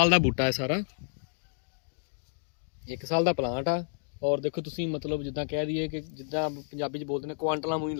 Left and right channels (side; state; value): right; silent; digital silence